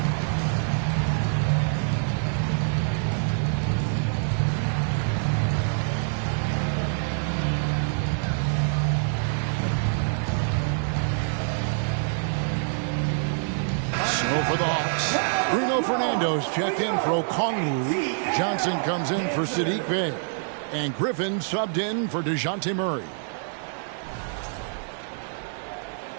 For the Hawks, Bruno Fernando's checked in for Okongwu. Johnson comes in for Sadiq Bey. And Griffin subbed in for DeJounte Murray.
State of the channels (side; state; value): left; silent; digital silence